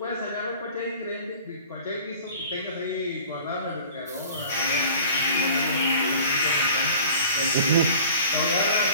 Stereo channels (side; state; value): both; inverted; correlation -0.44